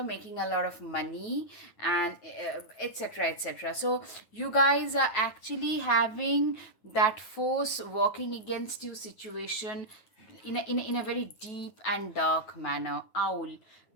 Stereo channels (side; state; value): right; late; 9.2 ms